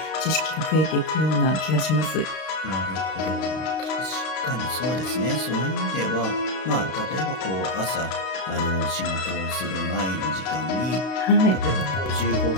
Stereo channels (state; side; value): late; right; 32 ms